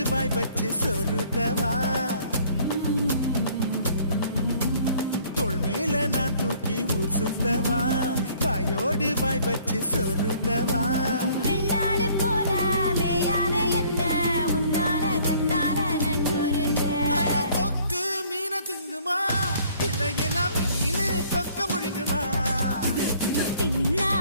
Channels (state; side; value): inverted; both; correlation -0.58